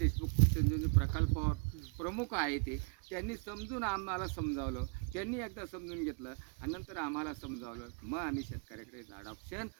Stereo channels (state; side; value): quieter; left; 34.6 dB